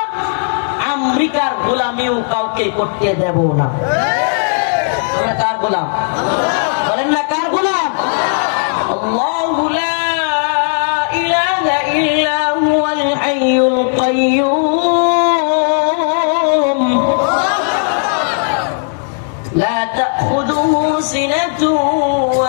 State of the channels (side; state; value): right; silent; digital silence